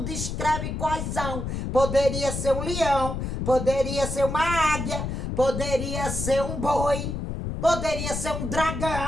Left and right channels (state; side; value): noise; left; rumble, 4 dB below the sound